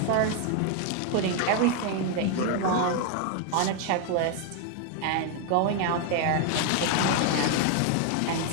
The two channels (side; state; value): both; different; correlation 0.00